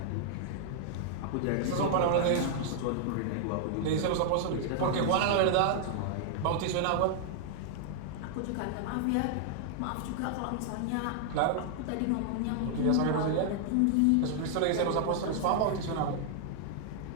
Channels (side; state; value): both; different; correlation -0.01